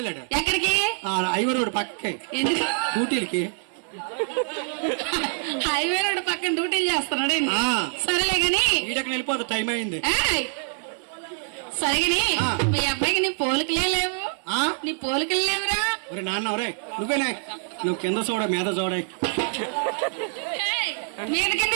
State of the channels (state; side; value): silent; left; 62 dB below the other